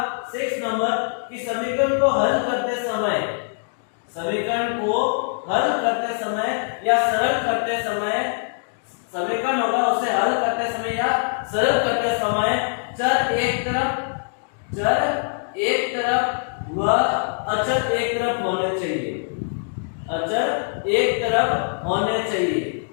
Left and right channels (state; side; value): silent; right; digital silence